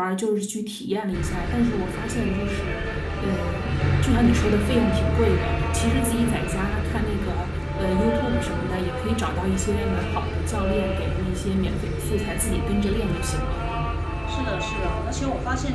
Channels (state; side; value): identical; both; correlation 1.00